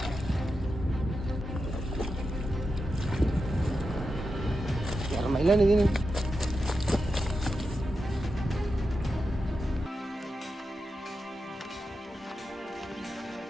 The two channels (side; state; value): both; normal; correlation 0.89